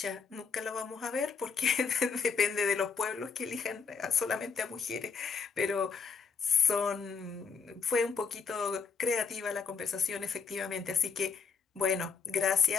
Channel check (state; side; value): quieter; right; 5.5 dB